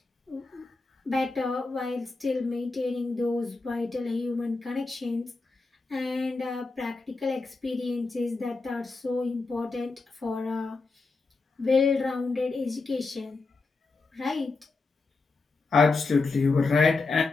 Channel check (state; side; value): quieter; right; 3.8 dB